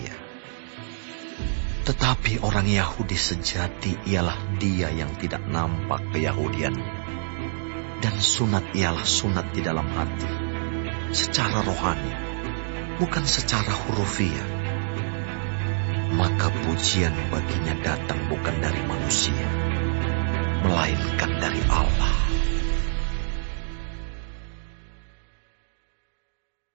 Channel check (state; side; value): silent; left; digital silence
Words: Tetapi orang Yahudi sejati ialah dia yang tidak nampak keyahudiannya, dan sunat ialah sunat di dalam hati, secara rohani, bukan secara hurufiah. Maka pujian baginya datang bukan dari manusia, melainkan dari Allah.